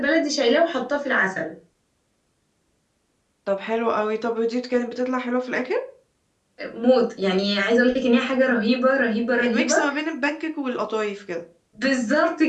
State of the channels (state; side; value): identical; both; correlation 1.00